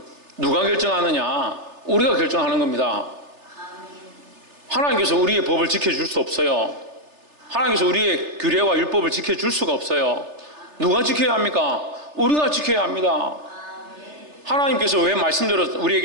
누가 결정하느냐? 우리가 결정하는 겁니다. 하나님께서 우리의 법을 지켜줄 수 없어요. 하나님께서 우리의 규례와 율법을 지켜줄 수가 없어요. 누가 지켜야 합니까? 우리가 지켜야 합니다. 하나님께서 왜 말씀대로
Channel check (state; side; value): late; left; 3.3 ms